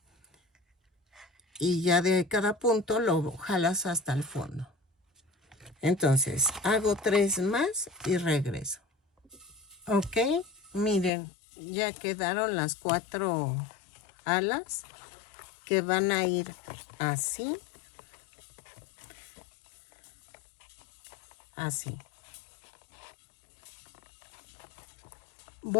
Y ya de cada punto lo jalas hasta el fondo. Entonces, hago 3 más y regreso. Ok, miren, ya quedaron las 4 alas que van a ir así. Así.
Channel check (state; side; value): drops out; right; at 11.1 s